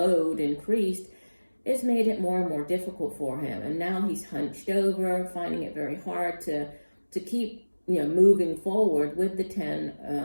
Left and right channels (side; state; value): both; inverted; correlation -1.00